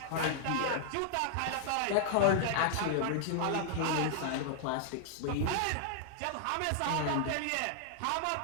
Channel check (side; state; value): both; different; correlation -0.01